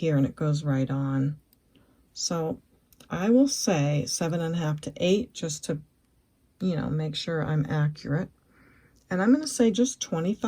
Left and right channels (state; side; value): identical; both; correlation 1.00